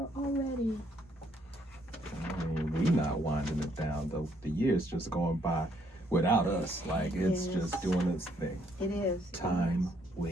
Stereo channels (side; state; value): both; normal; correlation 0.69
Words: already. I mean, we not winding it down, though. The year's just going by without us. Like, it's just doing its thing. It is. Time